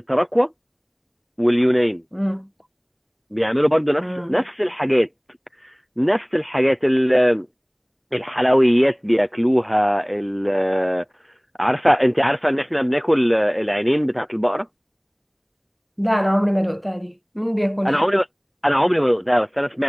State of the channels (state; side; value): identical; both; correlation 1.00